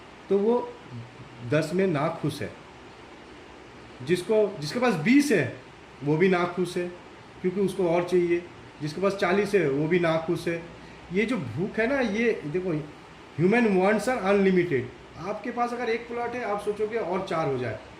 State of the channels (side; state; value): both; identical; correlation 1.00